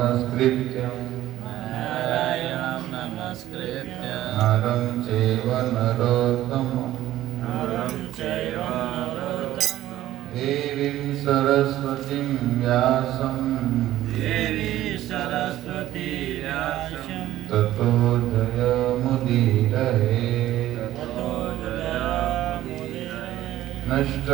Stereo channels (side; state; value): left; quieter; 13.9 dB